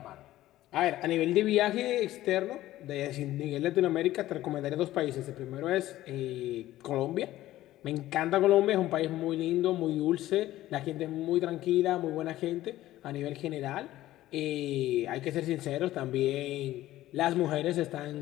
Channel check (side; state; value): right; quieter; 15.0 dB